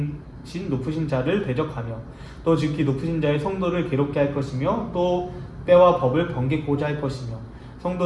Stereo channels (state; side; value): identical; both; correlation 1.00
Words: 자를 대적하며 또 지극히 높으신 자의 성도를 괴롭게 할 것이며 또 때와 법을 번개고자 할 것이며